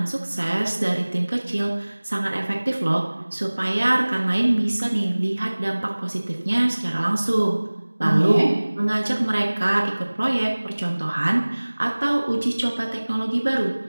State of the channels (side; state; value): both; inverted; correlation -1.00